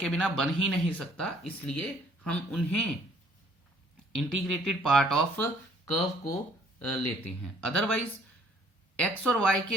बिना बन ही नहीं सकता, इसलिए हम उन्हें इंटीग्रेटेड पार्ट ऑफ कर्व को लेते हैं। अदरवाइज एक्स और वाई के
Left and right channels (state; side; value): normal; both; correlation 0.61